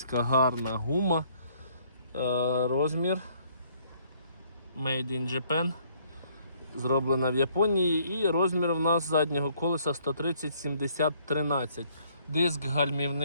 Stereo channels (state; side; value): inverted; both; correlation -0.64